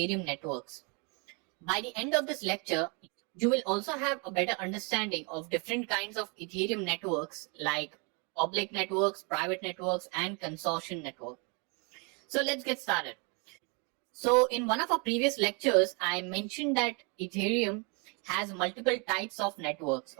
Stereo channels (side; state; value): left; quieter; 33.1 dB